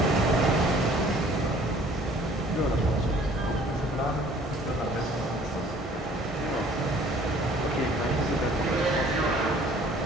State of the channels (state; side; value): normal; both; correlation 0.54